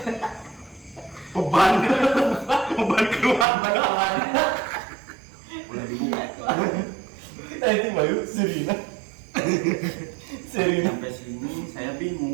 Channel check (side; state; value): left; drops out; at 3.5 s